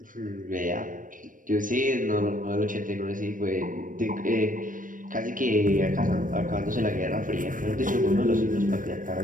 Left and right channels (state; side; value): late; left; 0.39 ms